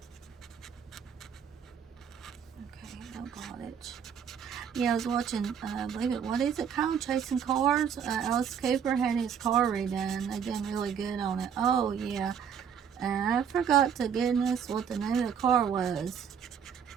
much. Yeah, I was watching, I believe it, what is it called? Chasing Cars. Alice Cooper had his car redone. They done really good on it. Oh, yeah. And I forgot to goodness what the name of the car was.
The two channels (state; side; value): quieter; left; 7.6 dB